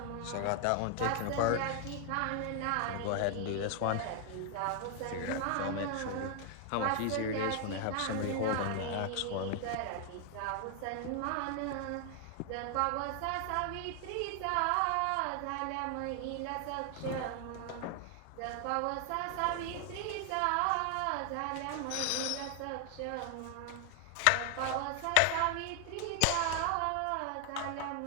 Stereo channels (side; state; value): both; different; correlation 0.00